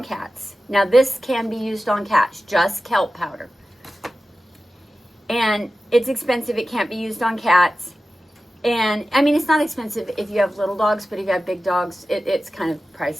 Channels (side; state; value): both; normal; correlation 0.94